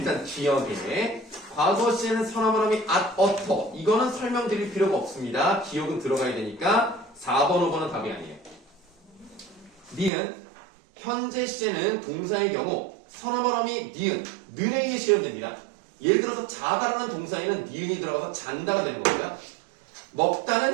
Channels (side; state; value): left; drops out; at 10.1 s